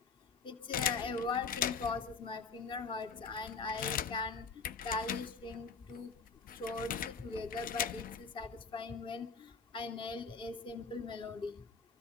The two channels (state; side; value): quieter; right; 5.1 dB